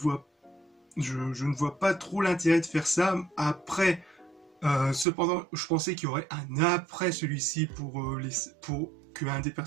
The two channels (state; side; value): drops out; left; at 5.1 s